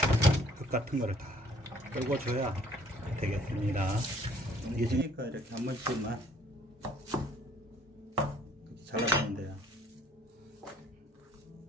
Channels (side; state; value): both; normal; correlation 0.59